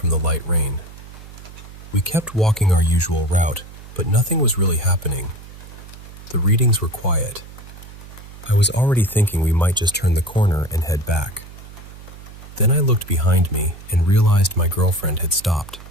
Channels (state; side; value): noise; right; hum, 17 dB below the sound